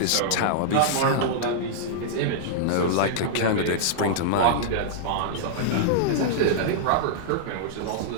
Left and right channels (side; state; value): both; different; correlation -0.02